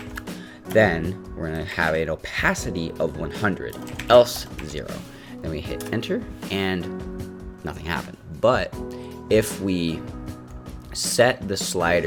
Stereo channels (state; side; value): identical; both; correlation 1.00